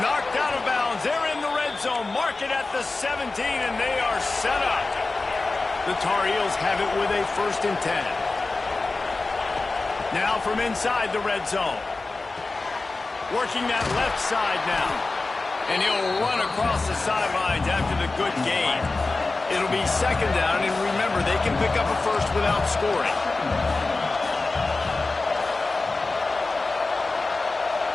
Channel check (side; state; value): right; quieter; 3.5 dB